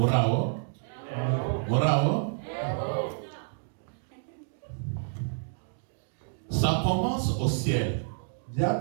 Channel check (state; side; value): silent; left; digital silence